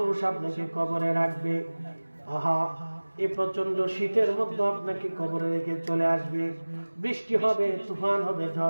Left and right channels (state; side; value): inverted; both; correlation -1.00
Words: আপনাকে কবরে রাখবে, আহা এই প্রচন্ড শীতের মধ্যে আপনাকে কবরে রেখে চলে আসবে, বৃষ্টি হবে, তুফান হবে,